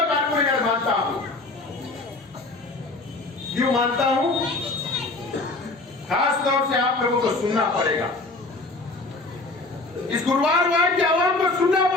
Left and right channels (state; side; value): quieter; right; 3.1 dB